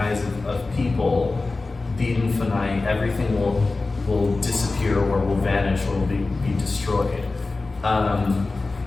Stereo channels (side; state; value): right; quieter; 3.5 dB